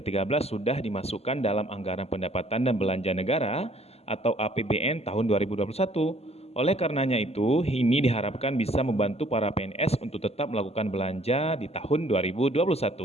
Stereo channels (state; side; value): late; right; 0.30 ms